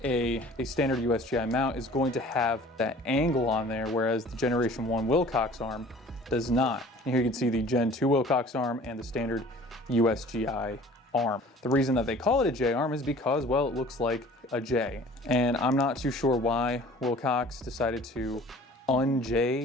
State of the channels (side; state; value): both; normal; correlation 0.48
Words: a standard USGI mount is going to have that angle on there, whereas the Generation 1 Wilcox arm does not. And here you can see the Gen 2 Wilcox arm and the standard USGI arm. The reason that they call it a J-arm is because, well, it looks like a J. And I'm not too sure why Wilcox decided to